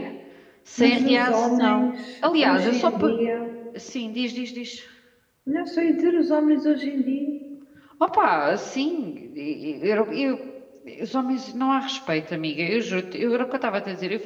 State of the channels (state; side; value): identical; both; correlation 1.00